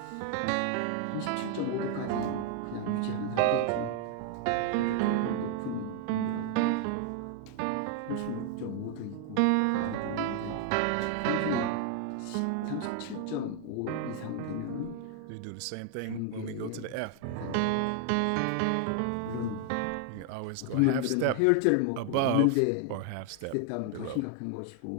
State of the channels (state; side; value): different; both; correlation 0.00